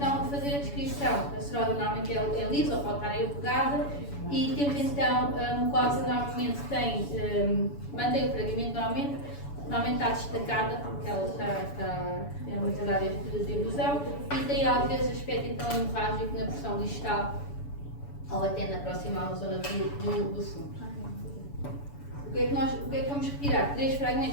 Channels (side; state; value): right; late; 7.0 ms